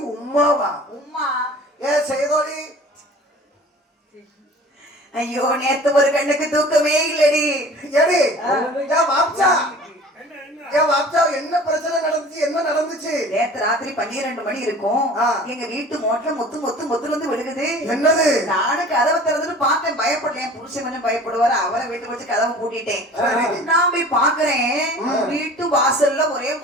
உம்மாவா? உம்மா ஏ செய்தோடி, ஐயோ நேத்து ஒரு கண்ணுக்கு தூக்கமே இல்லடி. ஏடி ஏன் வாப்சா, ஏன் வாப்சா என்ன பிரச்சனை நடந்துச்சு? என்ன நடந்துச்சு? நேத்து ராத்திரி 12 மணி இருக்கும். எங்க வீட்டு மோட்டர் மொத்து வந்து விழுகுது. என்னது? நானும் கதவை திறந்துட்டு பார்த்தேன். பயப்படல. என் புருஷன் கொஞ்சம் பயப்படுவாரு. அவரை வீட்டுக்கு வச்சு கதவை பூட்டிட்டேன். நான் போய் பாக்குறேன், வீட்டு வாசல்ல ஒரே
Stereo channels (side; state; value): both; normal; correlation 0.44